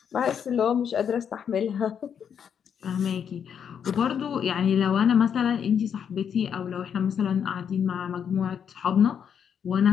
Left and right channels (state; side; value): quieter; right; 7.9 dB